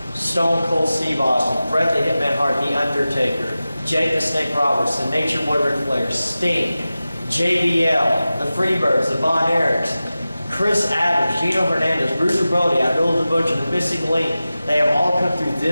Stone Cold Steve Austin, Bret the Hitman Hart, The Undertaker, Jake the Snake Roberts, the Nature Boy Ric Flair, Sting, JBL, the Freebirds, the Von Erichs, Chris Adams, Gino Hernandez, Bruiser Brody, Abdullah the Butcher, the Missing Link. They have all come through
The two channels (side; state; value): both; inverted; correlation -0.95